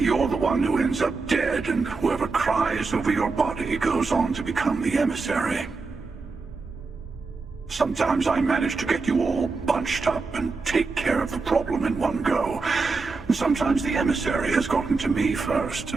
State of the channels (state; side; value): quieter; left; 4.2 dB